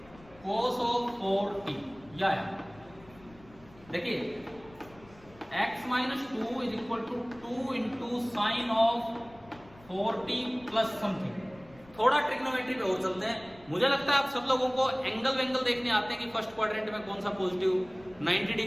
cos of 4t। या देखिए x minus 2 is equal to 2 into sine of 4t plus something. थोड़ा ट्रिग्नोमेट्री पे और चलते हैं। मुझे लगता है आप सब लोगों को एंगल वेंगल देखने आते हैं कि फर्स्ट क्वाड्रेंट में कौन सा पॉजिटिव 90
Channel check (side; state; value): left; noise; rumble, 24 dB below the sound